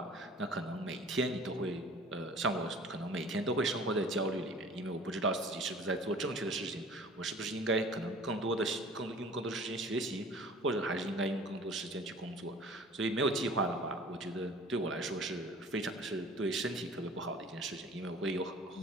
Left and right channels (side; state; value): both; normal; correlation 0.46